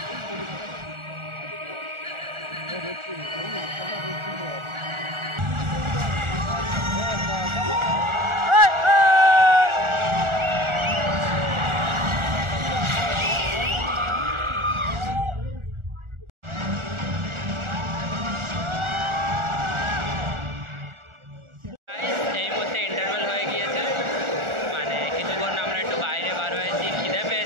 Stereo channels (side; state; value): left; late; 1.4 ms